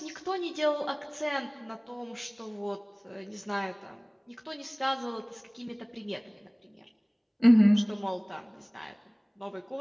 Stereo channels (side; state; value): both; identical; correlation 1.00